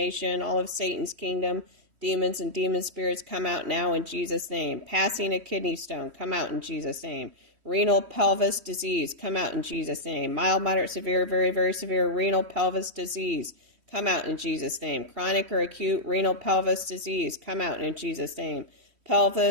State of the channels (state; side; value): late; left; 3.1 ms